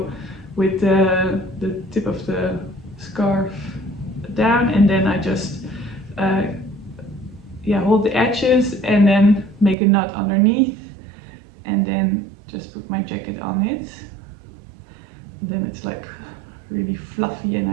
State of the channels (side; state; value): left; drops out; at 9.8 s